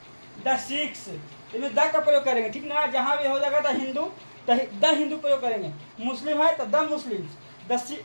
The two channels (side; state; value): both; inverted; correlation -1.00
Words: द सिख्स, इसमें द का प्रयोग करेंगे। ठीक ना, जहाँ भी हो जाएगा द हिंदू, द हिंदू प्रयोग करेंगे। मुस्लिम है तो द मुस्लिम्स, द